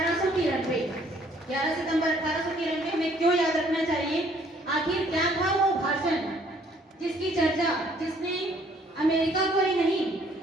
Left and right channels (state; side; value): normal; both; correlation 0.62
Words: 11 सितंबर 1893 हमें क्यों याद रखना चाहिए? आखिर क्या था वो भाषण जिसकी चर्चा, जिसने अमेरिका को ही नहीं